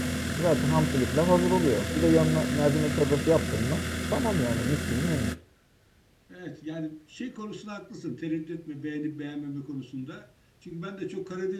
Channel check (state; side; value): identical; both; correlation 1.00